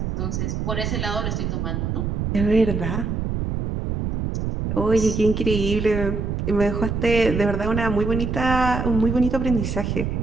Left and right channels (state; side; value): noise; right; rumble, 2 dB below the sound